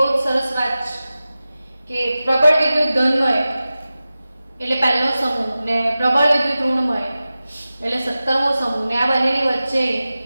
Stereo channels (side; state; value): both; inverted; correlation -0.95